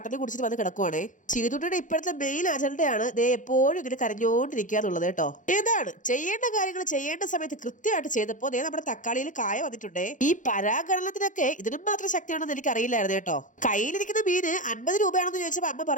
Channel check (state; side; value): late; right; 0.37 ms